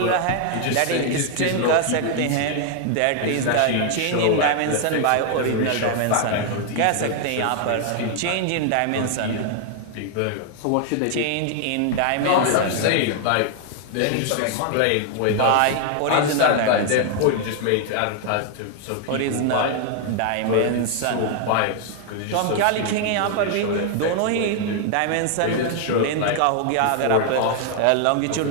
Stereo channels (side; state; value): both; different; correlation 0.00